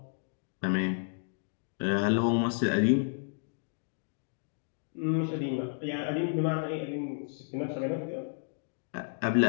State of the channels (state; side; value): silent; right; digital silence